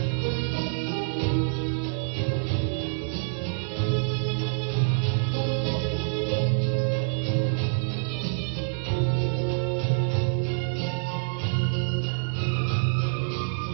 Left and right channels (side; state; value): left; silent; digital silence